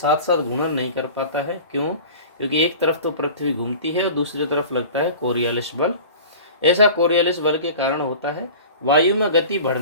साथ घूर्णन नहीं कर पाता है। क्यों? क्योंकि एक तरफ तो पृथ्वी घूमती है और दूसरी तरफ लगता है कोरियालिस बल। ऐसा कोरियालिस बल के कारण होता है वायु में गति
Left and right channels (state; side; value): inverted; both; correlation -0.39